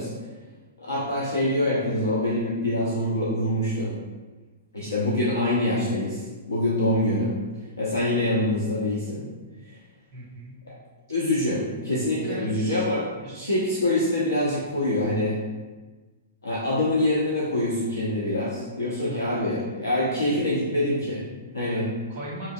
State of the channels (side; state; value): both; inverted; correlation -0.34